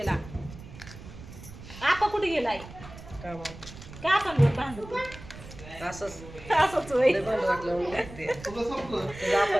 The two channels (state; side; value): noise; right; rumble, 15 dB below the sound